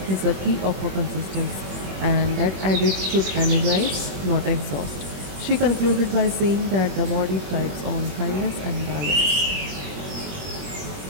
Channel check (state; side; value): late; left; 21 ms